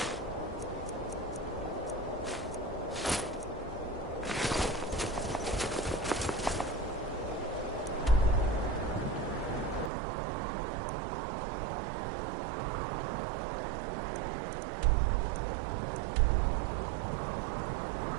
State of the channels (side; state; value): left; drops out; at 9.9 s